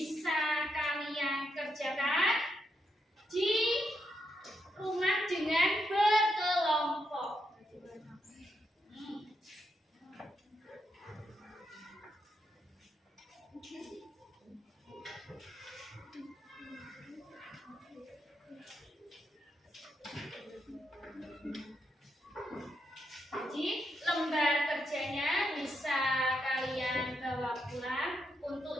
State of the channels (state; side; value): normal; both; correlation 0.82